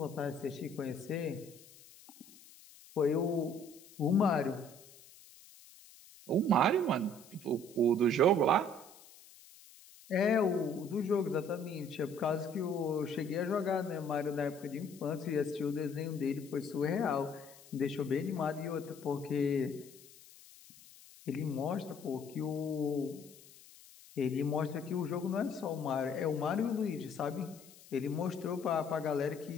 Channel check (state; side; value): noise; left; hiss, 22 dB below the sound